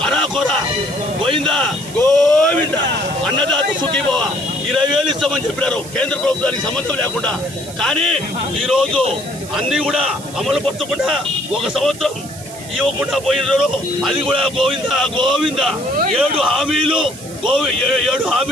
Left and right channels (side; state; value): right; noise; hiss, 15 dB below the sound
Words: అరాకొరా పోయిందా? గోవిందా అన్నదాత సుఖీభవ 20,000 ఇస్తామని చెప్పినారు కేంద్ర ప్రభుత్వానికి సంబంధం లేకుండా. కానీ ఈరోజు అన్ని కూడా అమలు పరచకుండా 1 సంవత్సరం ఇవ్వకుండా పోయినారు. అది కూడా గోవిందా 7